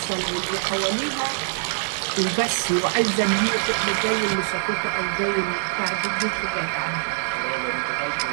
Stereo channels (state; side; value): silent; left; digital silence